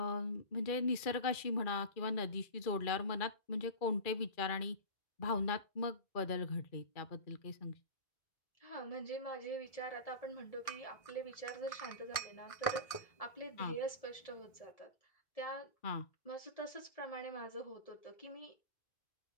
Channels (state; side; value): late; right; 2.4 ms